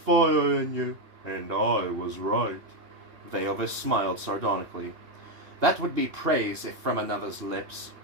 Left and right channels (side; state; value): left; late; 2.8 ms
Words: in you, and I was right." Veovis smiled sardonically. "That would be praise if from another's lips."